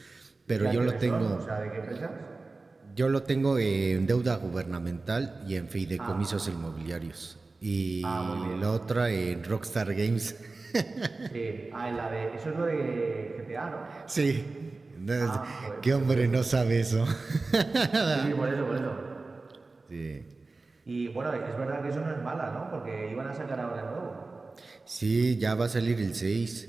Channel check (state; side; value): quieter; left; 3.6 dB